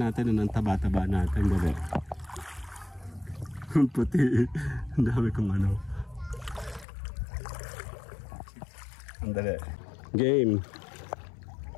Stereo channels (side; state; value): right; drops out; at 6.9 s